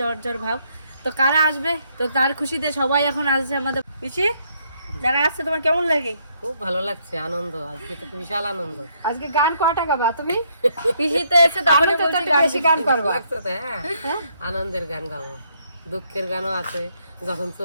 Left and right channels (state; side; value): inverted; both; correlation -0.71